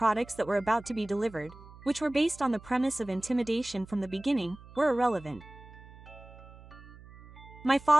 that were about to be delivered, which were based on the premise of intimidation from the beginning, were irrelevant. My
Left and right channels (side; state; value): right; noise; hum, 20 dB below the sound